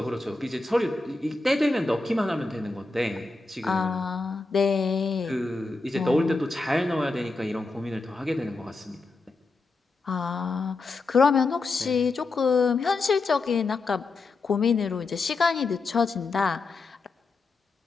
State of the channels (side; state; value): right; quieter; 3.6 dB